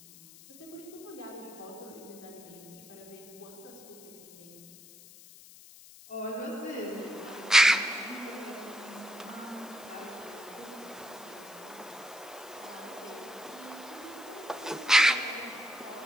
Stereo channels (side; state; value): left; noise; hiss, 19 dB below the sound